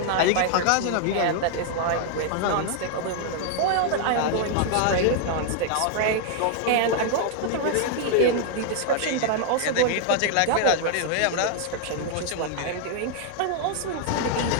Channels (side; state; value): both; different; correlation 0.00